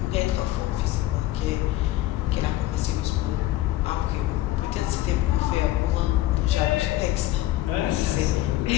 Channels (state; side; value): quieter; right; 15.8 dB